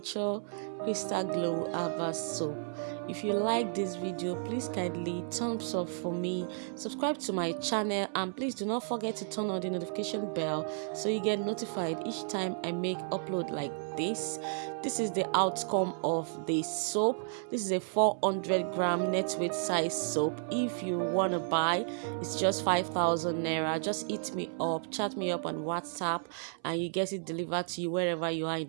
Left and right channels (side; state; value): left; silent; 56 dB below the other